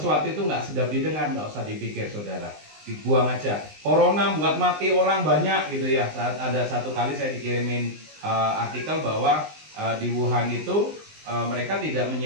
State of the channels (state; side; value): late; left; 19 ms